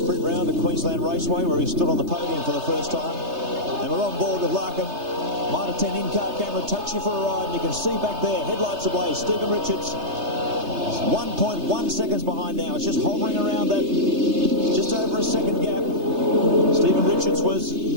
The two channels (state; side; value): late; left; 3.3 ms